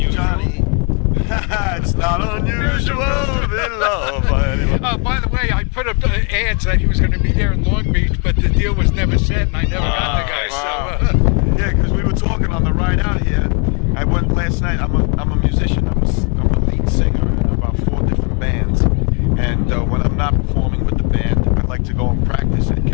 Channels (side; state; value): right; quieter; 37.1 dB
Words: it's not unusual to be loved by anyone. Oh, by the way, I put up ads that he was going to be there in Long Beach, but the deal was never set, and I never got the guy. Wow. So, yeah, because we were talking on the ride out here. I went last night. I'm a musician. I'm a lead singer in about 4 different bands. And when I'm not performing with the band, I like to go and practice at